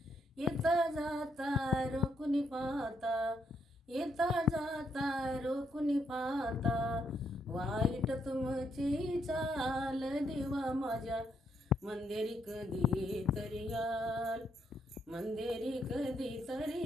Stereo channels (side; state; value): both; normal; correlation 0.76